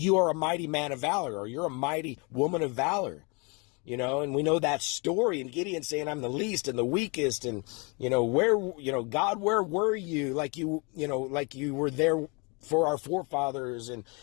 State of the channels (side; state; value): right; quieter; 31.1 dB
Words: are a mighty man of valor, or you're a mighty woman of valor, and we know that story, and Gideon saying, I'm the least and the weakest, and, God, where were you? Like you were there for our forefathers. And,